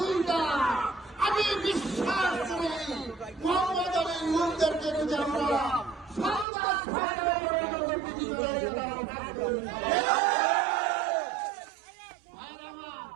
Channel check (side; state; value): left; drops out; at 6.5 s